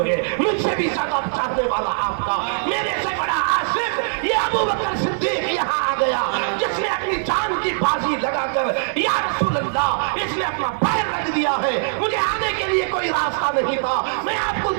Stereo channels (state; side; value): silent; left; 56 dB below the other